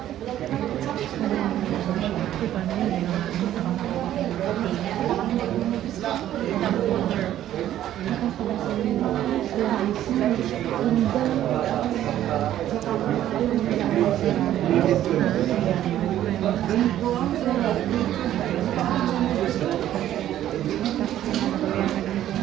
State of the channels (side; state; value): left; quieter; 12.2 dB